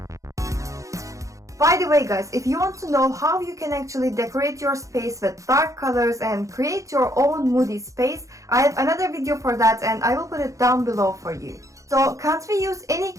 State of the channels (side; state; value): left; late; 0.15 ms